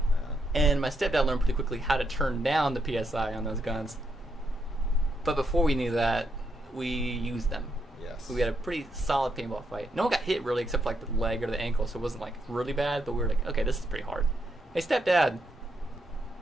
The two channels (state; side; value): normal; both; correlation 0.80